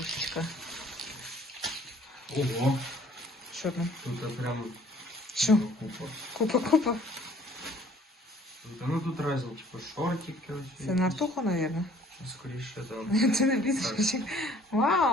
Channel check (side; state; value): both; normal; correlation 0.56